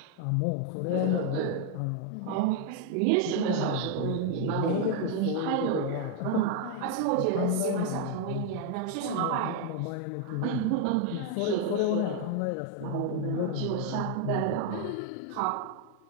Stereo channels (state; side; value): different; both; correlation 0.00